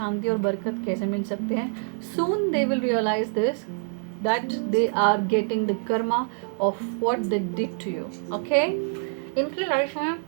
और बरकत कैसे मिल सकते हैं। Soon they will realize this, that they are getting the karma of what they did to you, okay. इनकी लाइफ में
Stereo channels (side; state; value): left; silent; digital silence